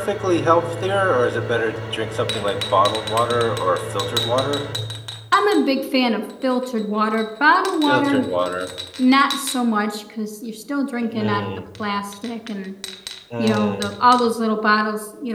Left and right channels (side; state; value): both; identical; correlation 1.00